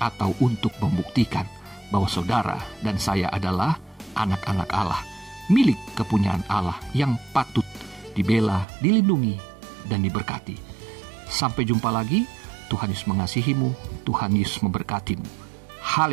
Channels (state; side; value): drops out; left; at 8.7 s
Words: atau untuk membuktikan bahwa saudara dan saya adalah anak-anak Allah, milik kepunyaan Allah yang patut dibela, dilindungi, dan diberkati. Sampai jumpa lagi. Tuhan Yesus mengasihimu, Tuhan Yesus memberkatimu.